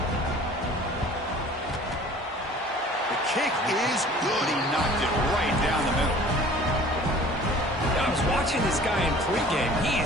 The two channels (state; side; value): normal; both; correlation 0.48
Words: The kick is good. He knocked it right down the middle. I was watching this guy in pregame.